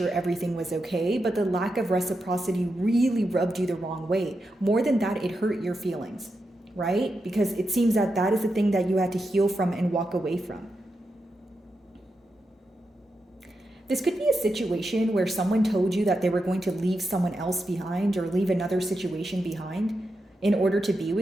everything was okay, but the lack of reciprocity really rubbed you the wrong way. More than that, it hurt your feelings, right? Because it seems that that is the thing that you had to heal from and walk away from. This could be a situation where someone told you that they were going to leave someone else behind or leave another situation behind in order to be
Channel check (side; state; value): both; normal; correlation 0.87